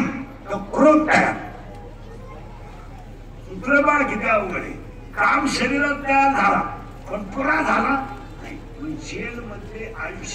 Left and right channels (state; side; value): identical; both; correlation 1.00